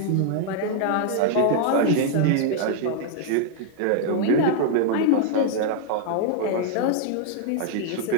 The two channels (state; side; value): different; both; correlation 0.00